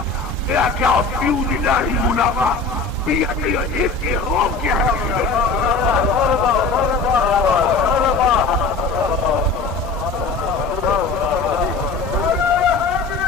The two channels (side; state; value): right; quieter; 4.2 dB